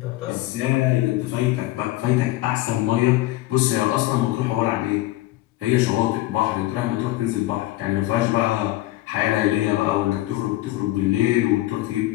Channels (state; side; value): quieter; right; 17.1 dB